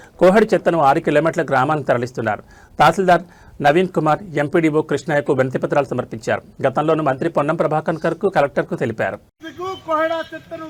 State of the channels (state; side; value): identical; both; correlation 1.00